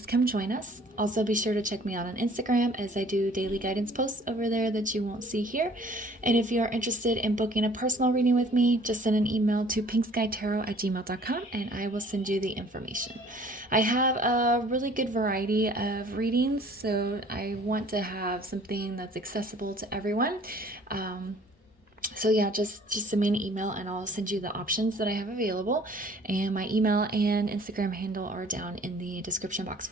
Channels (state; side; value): normal; both; correlation 0.54